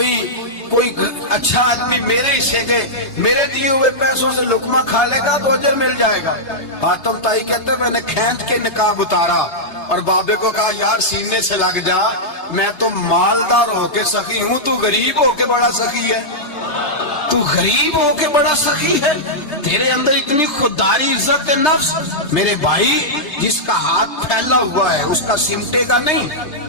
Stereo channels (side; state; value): right; late; 3.3 ms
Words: اچھا آدمی میرے حصے کے میرے دیے ہوئے پیسوں سے لقمہ کھا لے گا تو اجر مل جائے گا۔ آتم تائی کہتے ہیں میں نے کھینچ کے نقاب اتارا اور بابے کو کہا یار سینے سے لگ جا، میں تو مالدار ہو کے سخی ہوں، تو غریب ہو کے بڑا سخی ہے، تو غریب ہو کے بڑا سخی ہے، تیرے اندر اتنی خودداری عزت نفس۔ میرے بھائی جس کا ہاتھ پھیلا ہوا ہے اس کا سمٹے گا نہیں،